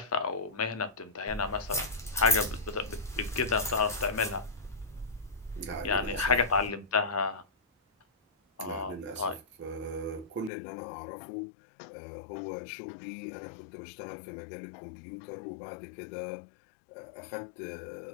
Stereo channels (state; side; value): drops out; right; at 10.5 s